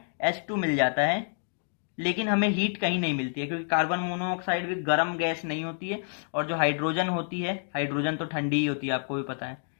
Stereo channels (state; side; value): silent; right; digital silence